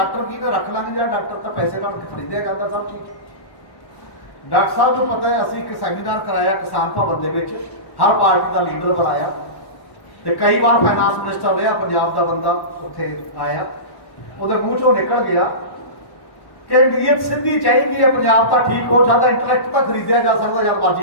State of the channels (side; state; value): right; late; 1.1 ms